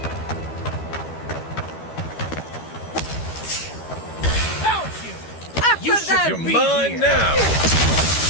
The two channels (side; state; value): right; late; 13 ms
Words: You should you're mine now!